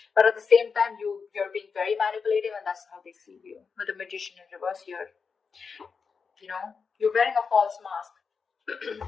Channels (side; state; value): right; quieter; 5.4 dB